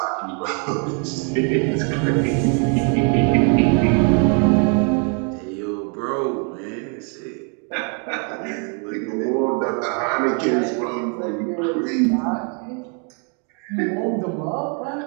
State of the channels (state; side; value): quieter; left; 39.0 dB